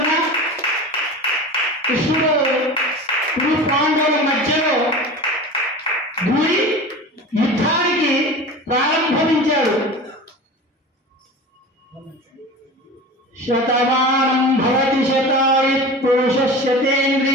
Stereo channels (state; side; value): normal; both; correlation 0.33